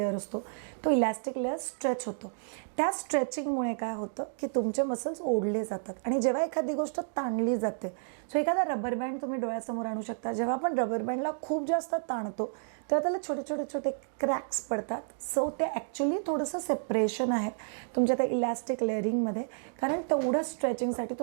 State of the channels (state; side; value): silent; left; digital silence